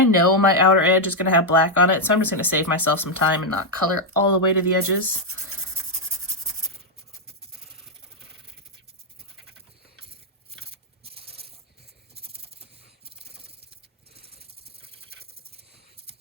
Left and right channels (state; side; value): normal; both; correlation 0.00